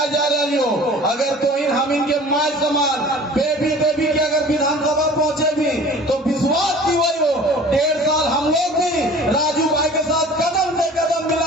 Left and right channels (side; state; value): both; normal; correlation 0.45